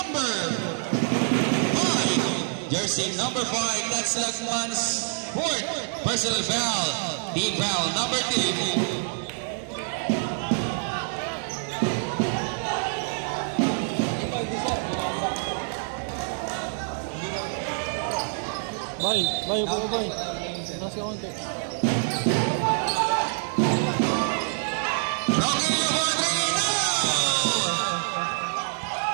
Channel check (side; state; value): left; silent; digital silence